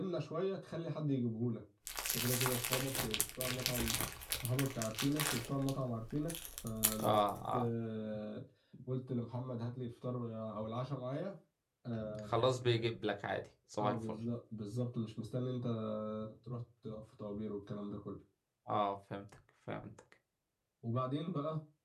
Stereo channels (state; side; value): identical; both; correlation 1.00